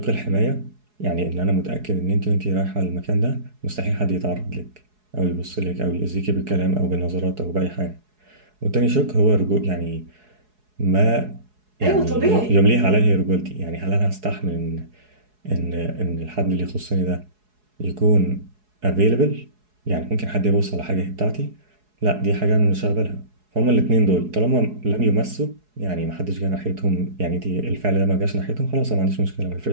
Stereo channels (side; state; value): left; late; 4.7 ms